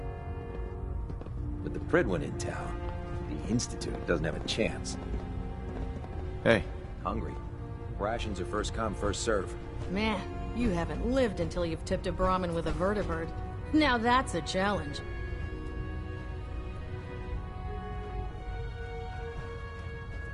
With the Prydwen in town, the Institute doesn't have a chance. Hey. Hungry. Rations are first come, first serve. Man, you haven't lived until you've tipped a Brahmin with a vertibird. Now that's a challenge.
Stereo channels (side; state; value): both; identical; correlation 1.00